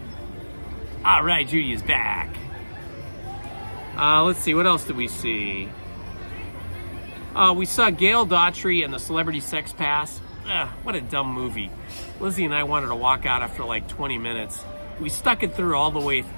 All right, Judy is back. Let's see, what else did we see? We saw Gail Daughtry and the Celebrity Sex Pass. What a dumb movie. Lizzie and I wanted to walk out after like 20 minutes. We stuck it through all the way,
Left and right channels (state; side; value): inverted; both; correlation -1.00